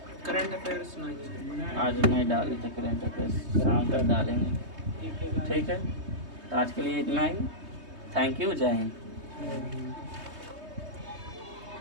करंट अफेयर्स नहीं, आज नहीं डाले थे करंट अफेयर्स, शाम तक डालेंगे। ठीक है, तो आज के लिए इतना ही। थैंक यू, जय हिंद।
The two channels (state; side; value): late; left; 3.2 ms